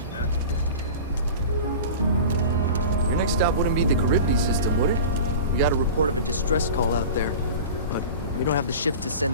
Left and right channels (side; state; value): both; inverted; correlation -0.34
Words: Your next stop wouldn't be the Charybdis system, would it? We got a report of a distress call out there, but we don't have the shift to